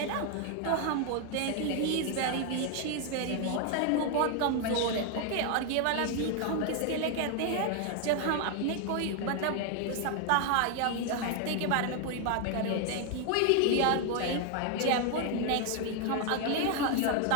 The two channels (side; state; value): both; different; correlation 0.00